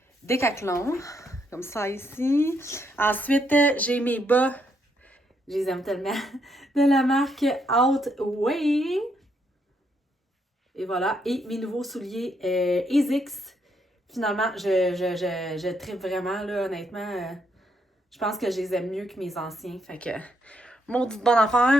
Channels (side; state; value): both; normal; correlation 0.75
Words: Décathlon. Comme ça ici. Ensuite, j'ai mes bas. Je les aime tellement. De la marque Outway. Et voilà. Et mes nouveaux souliers ASICS. Finalement, je tripe vraiment, là, honnêtement. Je pense que je les aime mieux que mes anciens. Fait que, maudite bonne